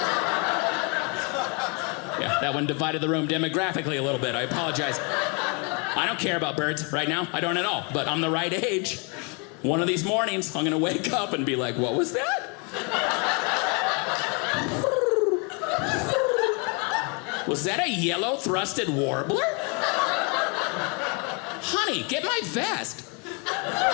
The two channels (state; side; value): quieter; right; 33.6 dB